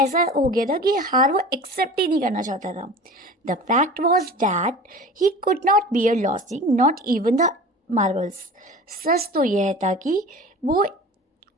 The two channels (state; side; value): normal; both; correlation 0.38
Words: हो गया था कि हार वो एक्सेप्ट ही नहीं करना चाहता था। The fact was that he could not bear losing, not even the marbles. सच तो यह था कि वो